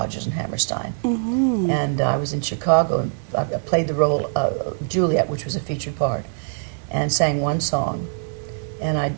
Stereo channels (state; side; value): silent; left; 63 dB below the other